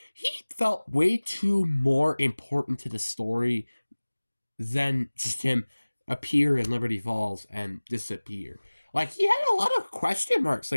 He felt way too more important to the story than just him appear in Liberty Falls and disappear. Like, he had a lot of question marks.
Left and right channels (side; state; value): both; inverted; correlation -1.00